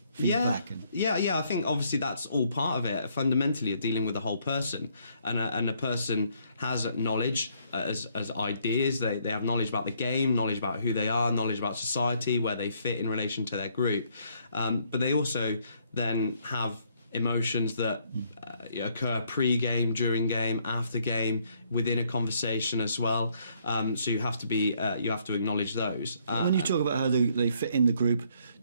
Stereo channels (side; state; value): both; inverted; correlation -0.69